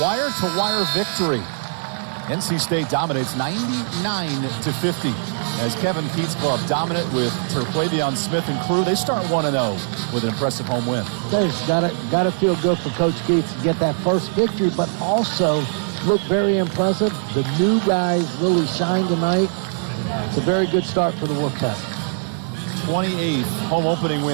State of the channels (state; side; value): silent; left; digital silence